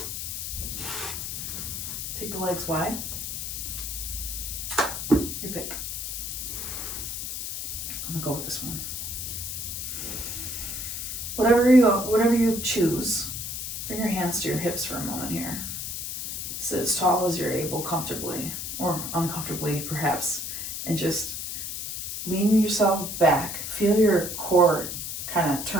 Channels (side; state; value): left; noise; hiss, 5 dB below the sound